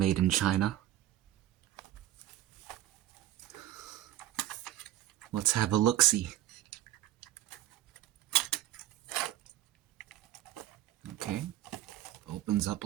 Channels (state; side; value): quieter; left; 13.8 dB